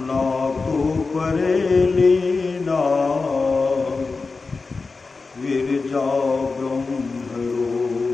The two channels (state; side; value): quieter; right; 4.1 dB